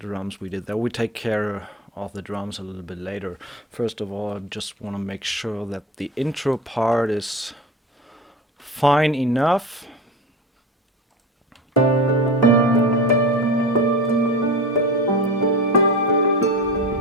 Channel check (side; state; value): both; normal; correlation 0.29